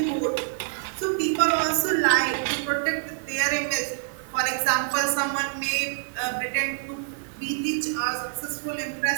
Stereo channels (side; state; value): left; silent; 61 dB below the other